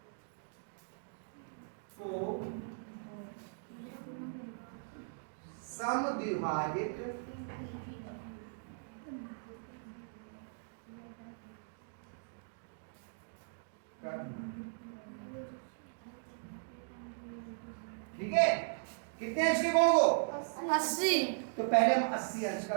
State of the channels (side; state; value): left; silent; digital silence